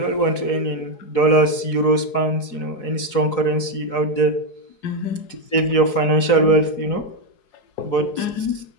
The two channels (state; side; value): late; right; 4.8 ms